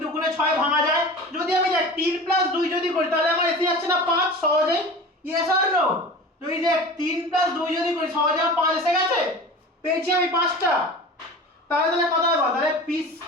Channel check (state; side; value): normal; both; correlation 0.36